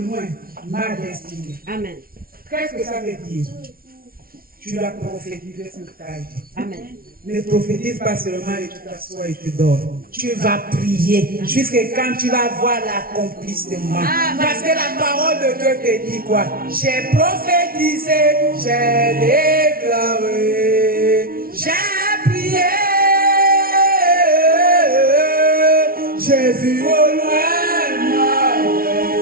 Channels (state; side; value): late; left; 0.43 ms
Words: ma destinée. Amen. Qu'est-ce que ça veut dire? Tu dois prophétiser sur ta vie. Amen. Ne prophétise pas seulement et tu t'assois et tu dors. Tu vas prier jusqu'à quand tu vas voir l'accomplissement. Parce que la parole de Dieu te dit quoi? J'ai prophétisé, j'ai déclaré, j'ai prié, j'ai vu au loin ma